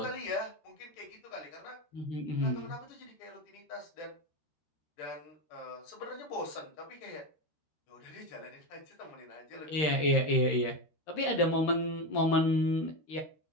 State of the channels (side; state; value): right; late; 13 ms